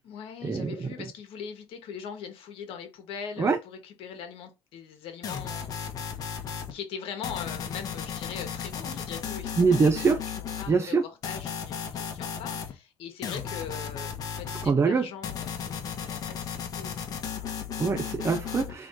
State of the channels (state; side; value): normal; both; correlation 0.63